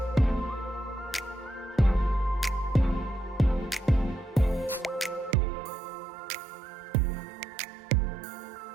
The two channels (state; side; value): drops out; left; at 5.4 s